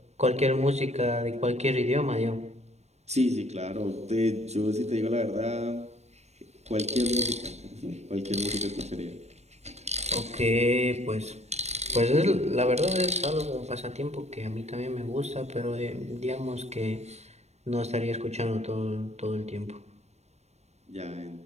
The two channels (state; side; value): late; left; 0.32 ms